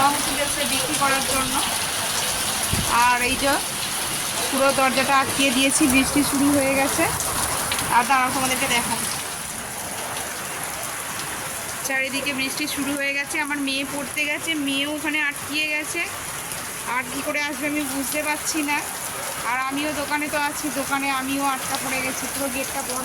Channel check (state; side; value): identical; both; correlation 1.00